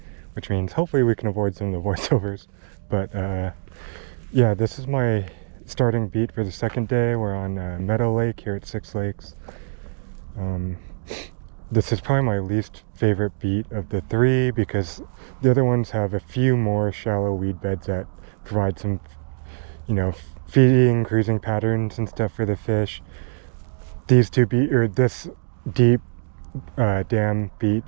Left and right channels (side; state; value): left; silent; 63 dB below the other